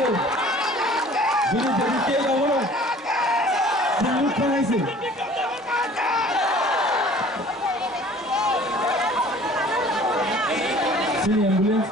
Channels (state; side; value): normal; both; correlation 0.49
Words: Ini jadi kaya orang. Silut thana itu. Sini ambulans